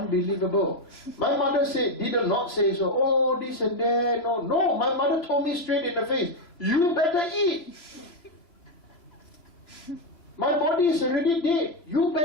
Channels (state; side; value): late; right; 3.0 ms